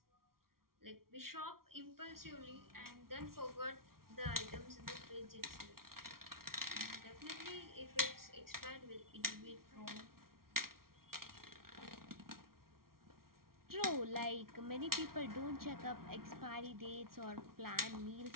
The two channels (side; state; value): left; late; 0.93 ms